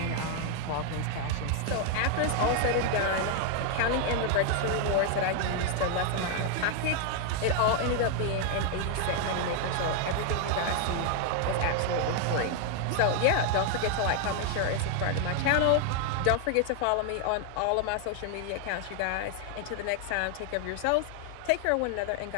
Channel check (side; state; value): both; different; correlation 0.00